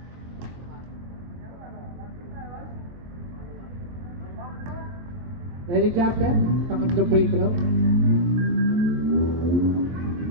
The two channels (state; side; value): late; left; 22 ms